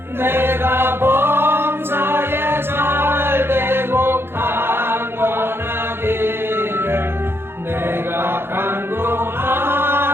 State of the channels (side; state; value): left; late; 0.11 ms